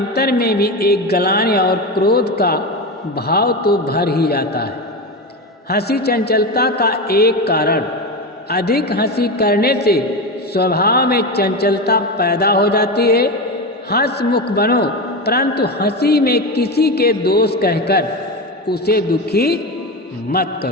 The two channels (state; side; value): normal; both; correlation 0.20